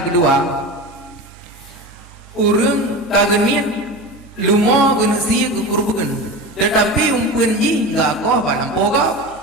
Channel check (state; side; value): normal; both; correlation 0.28